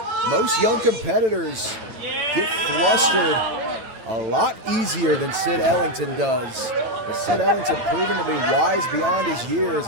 Most young competitors get flustered a lot easier than Sid Ellington does. But Sid Ellington proven to be wise beyond his years,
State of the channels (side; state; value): left; late; 9.0 ms